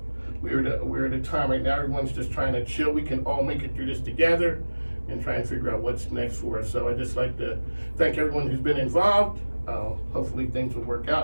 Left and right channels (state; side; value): inverted; both; correlation -1.00